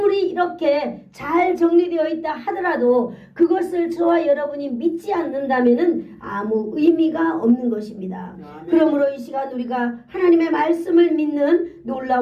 이렇게 잘 정리되어 있다 하더라도 그것을 저와 여러분이 믿지 않는다면은 아무 의미가 없는 것입니다. 아멘. 그러므로 이 시간 우리가 하나님의 말씀을 믿는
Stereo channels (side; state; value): both; identical; correlation 1.00